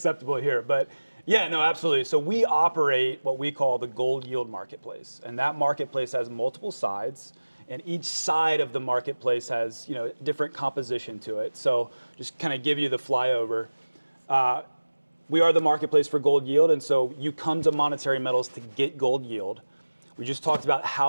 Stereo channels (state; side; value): inverted; both; correlation -1.00